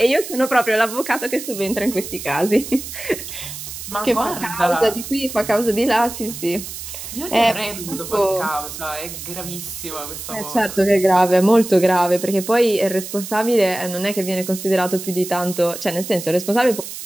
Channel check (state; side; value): noise; right; hiss, 10 dB below the sound